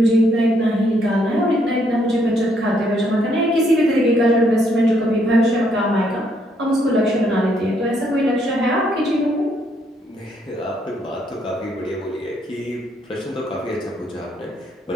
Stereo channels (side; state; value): both; normal; correlation 0.71